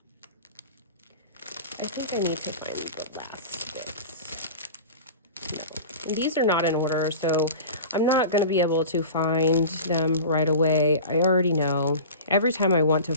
I think I need to find the last bits. No, and these are not in order, so I'm not going to be able to find them right away. I already know. Every time I want to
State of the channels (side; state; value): both; inverted; correlation -0.34